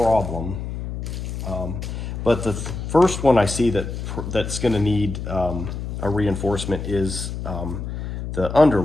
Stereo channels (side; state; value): left; noise; hum, 6 dB below the sound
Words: But the first one I see that's going to need a reinforcement is the